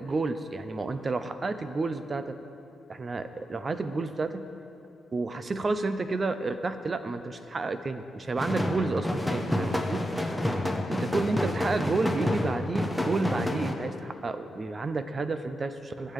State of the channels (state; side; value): normal; both; correlation 0.89